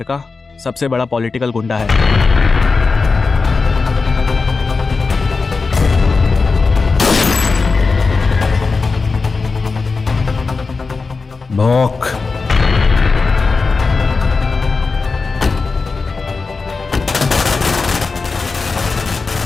का सबसे बड़ा पॉलिटिकल गुंडा है। भौंक।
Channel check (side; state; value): right; quieter; 4.3 dB